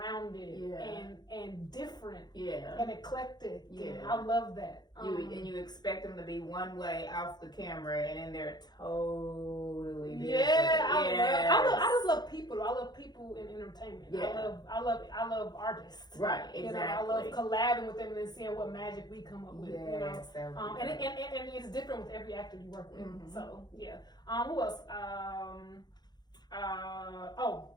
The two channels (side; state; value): right; late; 0.20 ms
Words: and different and eclectic. Yeah. And I love that. You expect them to be one way off the camera, and then they're totally different. Yeah, I just love people. I love people in entertainment. Yeah. I love artists. Right, exactly. You know, I love collabing with them and then seeing what magic we come up with. Yes, you know, and it's different with every actor you work with. Mm-hmm. So yeah. Who else?